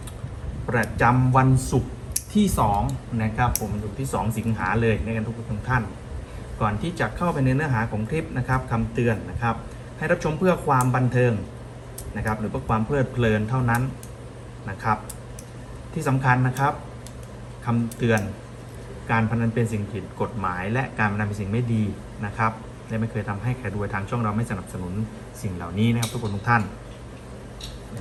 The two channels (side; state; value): both; identical; correlation 1.00